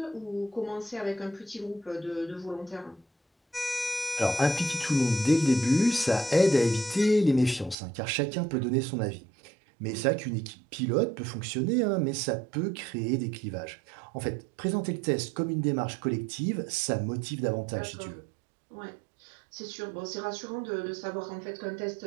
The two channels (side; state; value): left; drops out; at 7.8 s